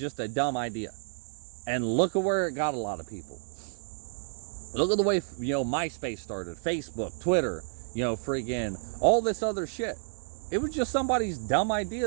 a dumb idea. And look at where it got a lot of people. Look at the way, MySpace started, Facebook, Twitter, freaking, all this other shit. It was just somebody's dumb idea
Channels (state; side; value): silent; left; 58 dB below the other